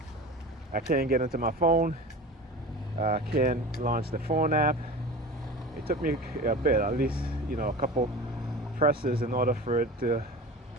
I can't get into my phone, can't launch the phone app. It took me a bit, at least, a couple presses in order for it to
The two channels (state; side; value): normal; both; correlation 0.34